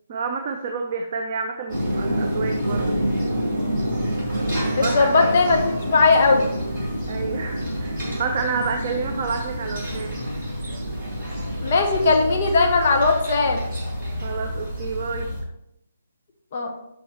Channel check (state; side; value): inverted; both; correlation -0.75